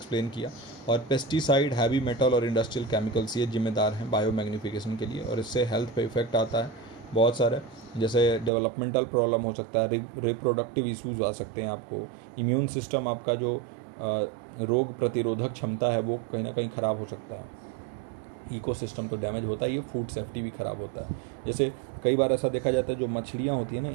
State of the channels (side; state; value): left; drops out; at 8.5 s